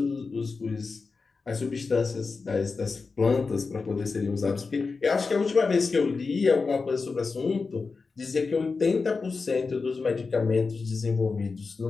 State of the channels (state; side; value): quieter; right; 4.4 dB